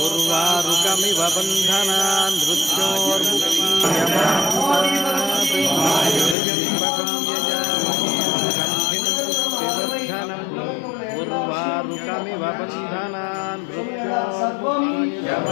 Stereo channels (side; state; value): right; drops out; at 6.4 s